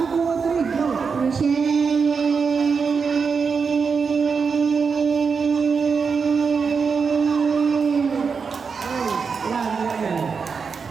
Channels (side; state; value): left; quieter; 5.5 dB